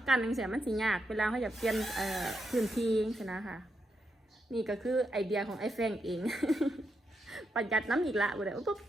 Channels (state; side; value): normal; both; correlation 0.83